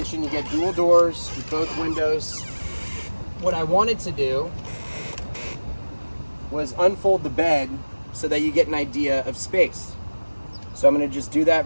you get dual doors with both windows. What I wanted to do was unfold the bed so that you get an idea of space. So I'm gonna just do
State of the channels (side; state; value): both; inverted; correlation -1.00